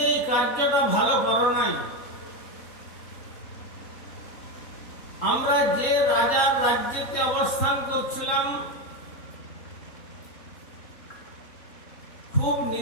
এই কার্যটা ভালো করো নাই। আমরা যে রাজার রাজ্যে অবস্থান করছিলাম, খুব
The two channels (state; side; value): late; right; 3.9 ms